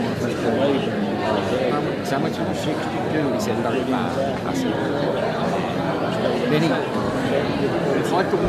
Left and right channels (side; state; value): both; identical; correlation 1.00